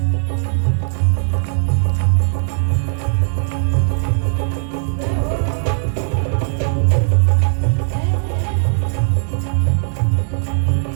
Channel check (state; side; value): silent; left; digital silence